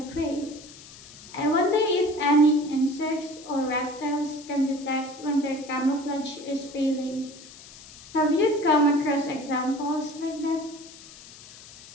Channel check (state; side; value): noise; left; hiss, 19 dB below the sound